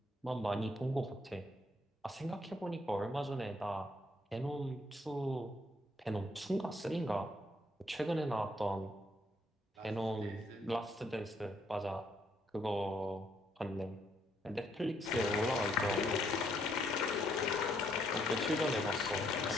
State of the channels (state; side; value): normal; both; correlation 0.71